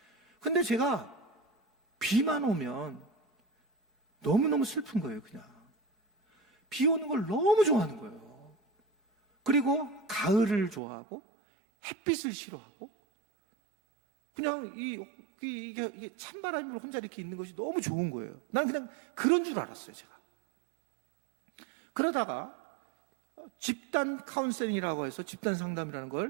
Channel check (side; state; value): left; drops out; at 10.8 s